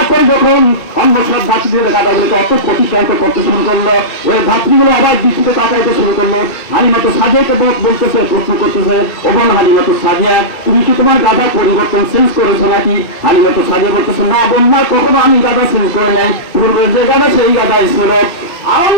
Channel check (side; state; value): right; late; 2.3 ms